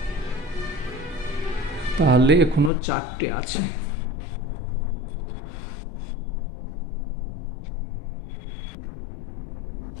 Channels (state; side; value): drops out; right; at 2.7 s